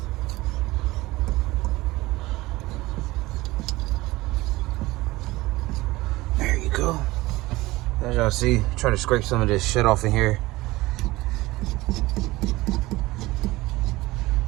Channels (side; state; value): left; quieter; 19.5 dB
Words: There you go. As y'all see, try to scrape some of this shit off in here.